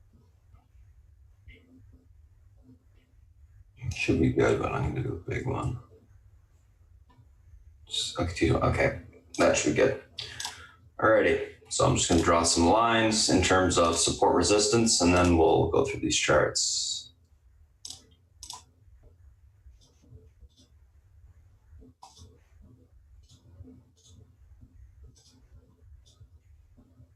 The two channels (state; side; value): identical; both; correlation 1.00